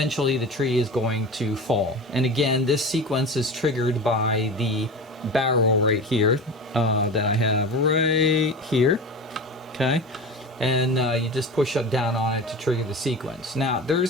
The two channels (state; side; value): normal; both; correlation 0.30